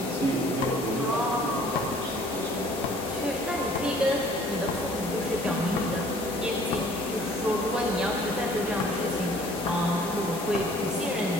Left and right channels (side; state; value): both; normal; correlation 0.55